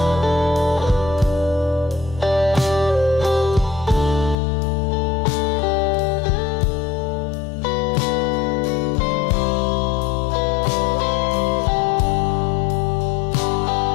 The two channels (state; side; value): drops out; right; at 4.4 s